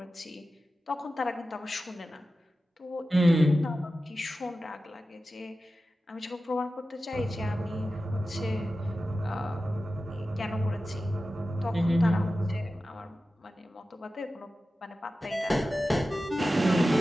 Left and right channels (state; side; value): normal; both; correlation 0.94